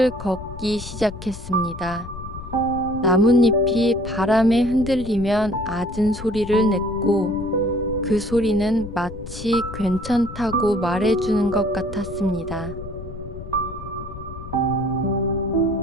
걷기 시작했습니다. 나뭇잎이 바람에 흔들리면 잦은 소리를 냈고, 그 소리는 마치 괜찮다고 말해주는 것 같았습니다.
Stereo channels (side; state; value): left; noise; rumble, 12 dB below the sound